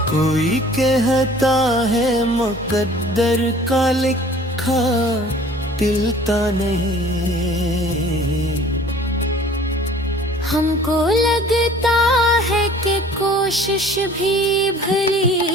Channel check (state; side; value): normal; both; correlation 0.50